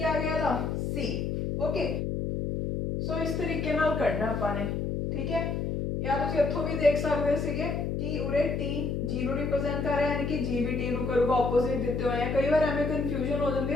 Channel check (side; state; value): left; noise; hum, 1 dB below the sound